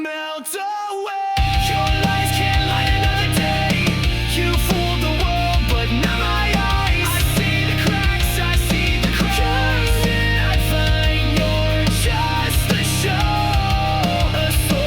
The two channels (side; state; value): both; identical; correlation 1.00